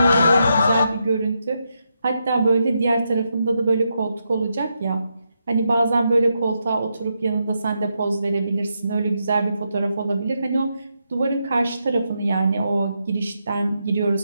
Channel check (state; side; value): inverted; both; correlation -0.83